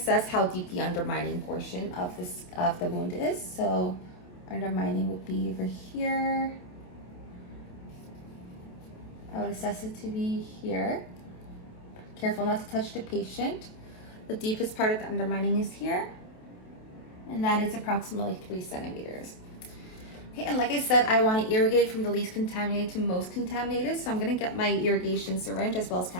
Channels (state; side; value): late; right; 28 ms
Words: how deep the undermining portion of the wound is. So undermining would be over here. I would assess it to be here. Careful not to touch the patient. The deepest part of the undermining is here. And that is approximately 3 centimeters. Okay, and like I said, I want to irrigate from the least contaminated to most contaminated. So I'm gonna get my irrigation syringe as well as